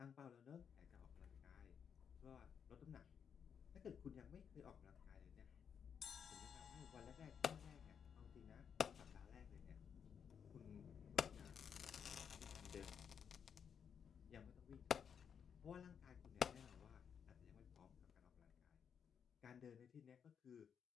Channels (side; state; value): right; quieter; 7.3 dB